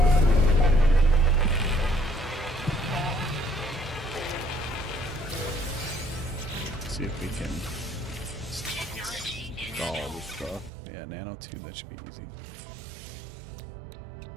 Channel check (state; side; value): drops out; left; at 10.7 s